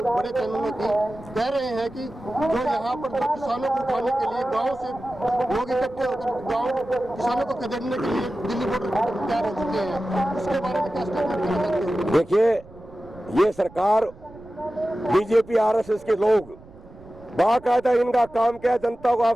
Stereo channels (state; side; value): noise; right; rumble, 22 dB below the sound